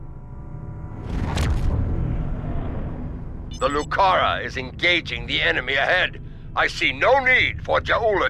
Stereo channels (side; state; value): both; identical; correlation 1.00